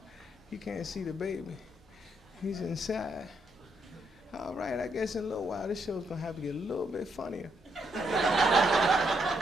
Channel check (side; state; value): both; normal; correlation 0.76